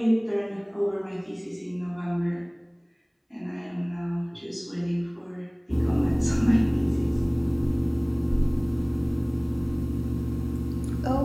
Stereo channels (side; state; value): both; identical; correlation 1.00